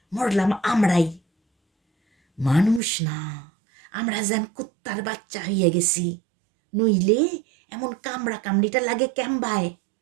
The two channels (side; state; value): left; drops out; at 2.8 s